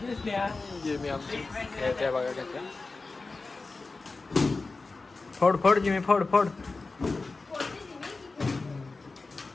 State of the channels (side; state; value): right; quieter; 3.7 dB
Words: स्नेहा. जिमी आमची येते बघा कसं. फोड जिमी फोड.